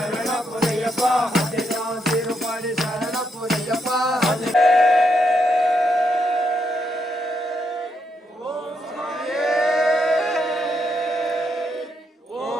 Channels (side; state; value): both; normal; correlation 0.78